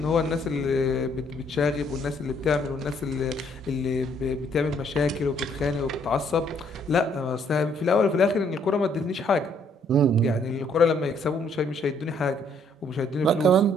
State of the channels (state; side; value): normal; both; correlation 0.66